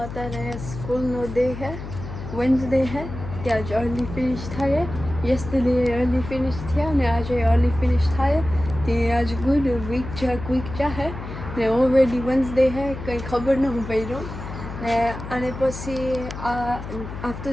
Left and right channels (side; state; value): left; noise; hum, 9 dB below the sound